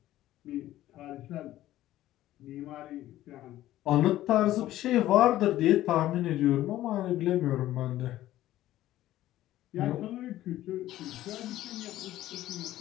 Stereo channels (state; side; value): quieter; right; 14.4 dB